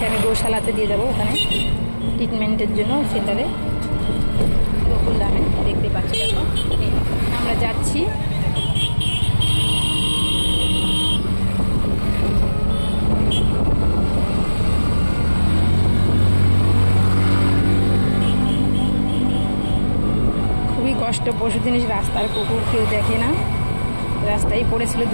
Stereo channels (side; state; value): both; inverted; correlation -1.00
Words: আমি গোশালাতে দিয়ে যাবো ওখানে ট্রিটমেন্টের জন্য সেন্টারে গোকুলধামে, দেখতে পাচ্ছি। আমরা যাচ্ছি। খুবই কষ্ট, পশু জিনিস রাস্তার কুকুর কেউ দেখে না, রাস্তায় পড়েছিল